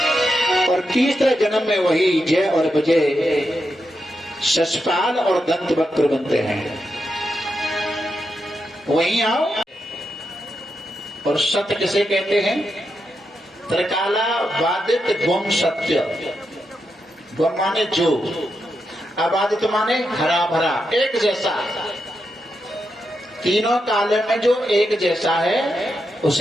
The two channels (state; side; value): normal; both; correlation 0.85